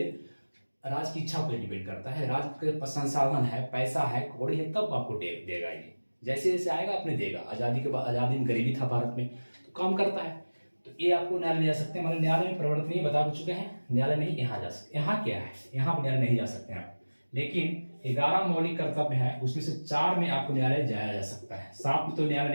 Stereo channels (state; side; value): inverted; both; correlation -1.00